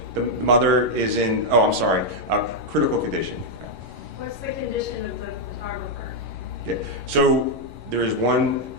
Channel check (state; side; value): late; left; 11 ms